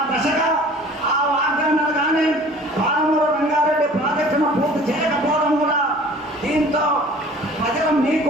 దశగా ఆ వాగ్దానాలు కానీ పాలమూరు రంగారెడ్డి ప్రాజెక్టును పూర్తి చేయకపోవడం కూడా దీంతో ప్రజలు మీ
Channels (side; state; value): both; normal; correlation 0.48